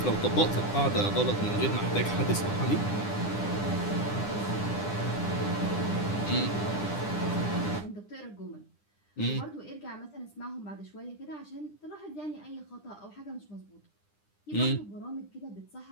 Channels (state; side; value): late; right; 9.9 ms